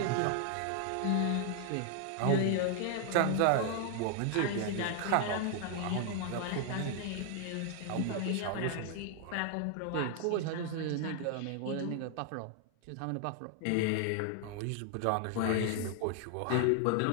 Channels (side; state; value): both; different; correlation 0.00